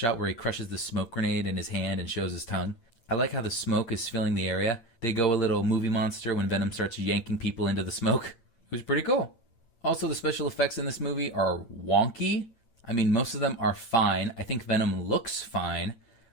where he crushes the smoke grenade in his hand and shows his tongue. I like how the smoke is filling the area. They go a little movie monster when Venom starts yanking people into the smoke. It was pretty cool. Also, the special effects in this movie are wonky. I mean, most of them are fine. I think Venom looks fine.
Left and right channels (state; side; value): late; right; 8.7 ms